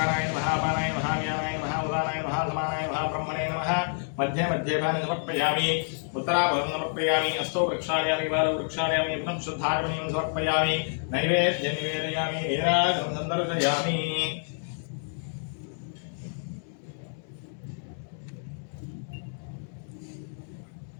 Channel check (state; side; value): silent; right; digital silence